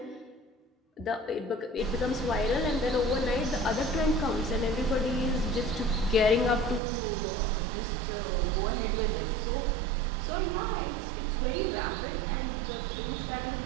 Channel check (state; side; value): drops out; left; at 6.8 s